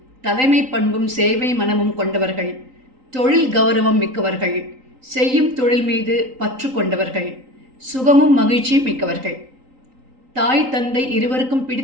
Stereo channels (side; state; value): left; late; 3.8 ms